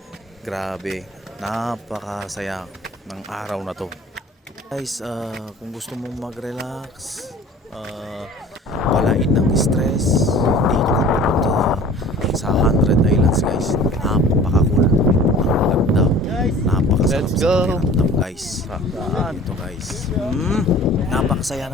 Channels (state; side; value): normal; both; correlation 0.45